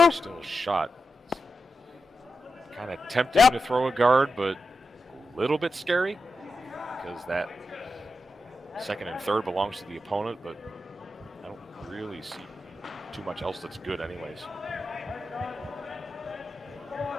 still shot. Kind of tempting to throw a guard, but a little bit scary because that second and third belongs to the opponent, but I don't really see too much else that's good anyways.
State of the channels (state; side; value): normal; both; correlation 0.89